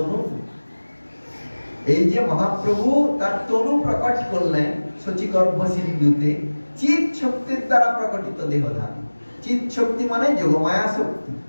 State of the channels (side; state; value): both; inverted; correlation -1.00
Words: এই যে মহাপ্রভু তার তনু প্রকট করলেন শচীগর্ভ সিন্ধুতে চিৎ শক্তির দ্বারা প্রকটিত দেহধান। চিৎ শক্তি মানে যোগমায়া শক্তি,